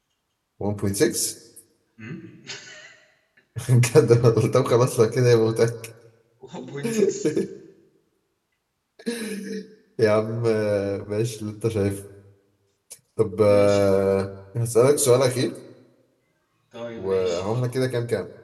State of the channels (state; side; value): identical; both; correlation 1.00